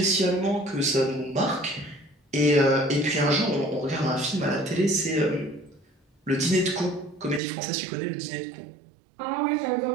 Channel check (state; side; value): drops out; left; at 7.4 s